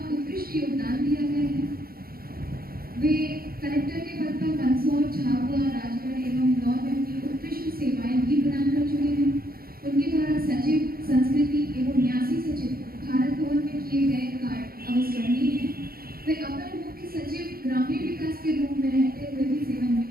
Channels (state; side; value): late; left; 0.43 ms